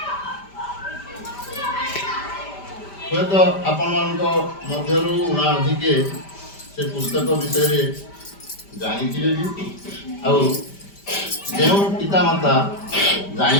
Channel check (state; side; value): late; right; 5.1 ms